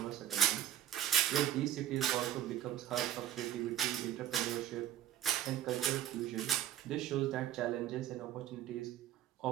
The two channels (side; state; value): left; quieter; 11.5 dB